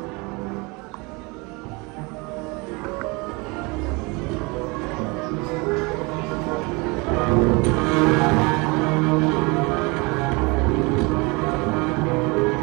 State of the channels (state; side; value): quieter; left; 27.4 dB